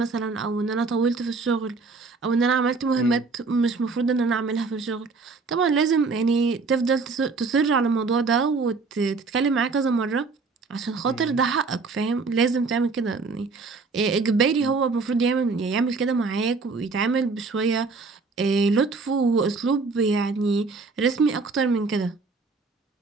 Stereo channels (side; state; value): left; quieter; 4.2 dB